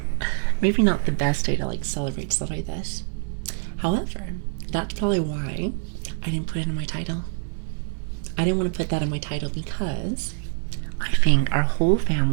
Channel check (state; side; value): silent; left; 59 dB below the other